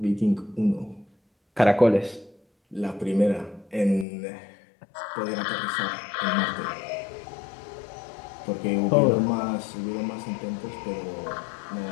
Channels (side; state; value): right; drops out; at 4.0 s